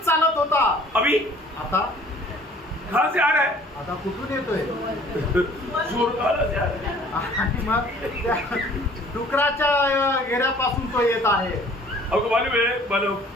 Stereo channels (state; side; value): normal; both; correlation 0.53